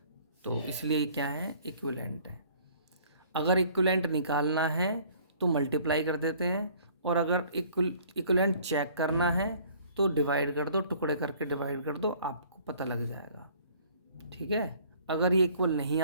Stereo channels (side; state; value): both; inverted; correlation -0.55